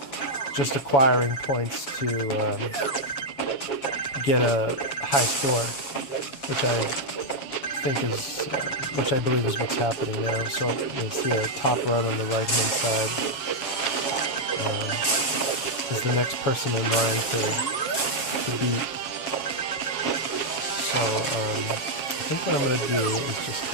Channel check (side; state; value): right; late; 7.4 ms